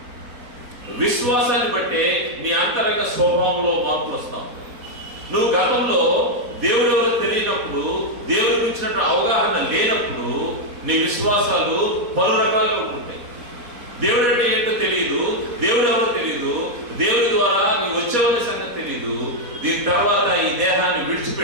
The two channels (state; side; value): late; left; 4.2 ms